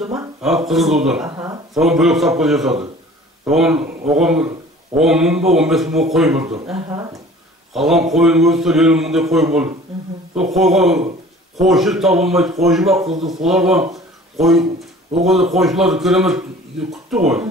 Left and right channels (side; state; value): both; normal; correlation 0.47